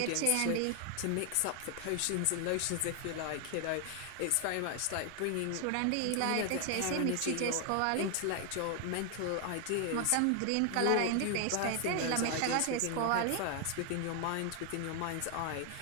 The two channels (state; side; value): different; both; correlation 0.00